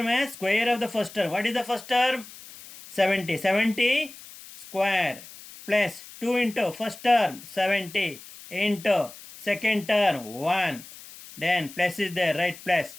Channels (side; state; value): left; noise; hiss, 17 dB below the sound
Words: as square of the first term. What is the first term? 70. 70 square plus 2 into first term 70 into second term 1. Then plus is there, right, plus.